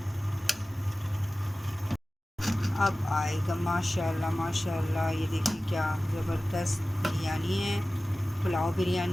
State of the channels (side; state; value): both; normal; correlation 0.96